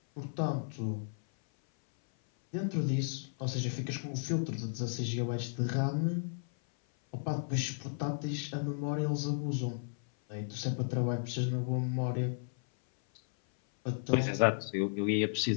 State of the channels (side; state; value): right; silent; 55 dB below the other